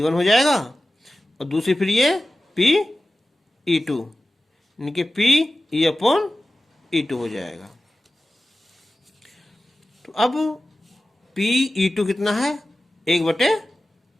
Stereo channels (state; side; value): normal; both; correlation 0.95